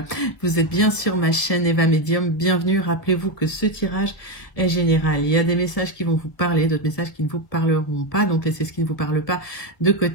Vous êtes bien sur ma chaîne Eva Medium. Bienvenue. Rappelez-vous que ce tirage est général. Il y a des messages qui vont vous parler, d'autres messages qui ne vous parleront pas. Donc, laissez ce qui ne vous parle pas de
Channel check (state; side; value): late; right; 1.7 ms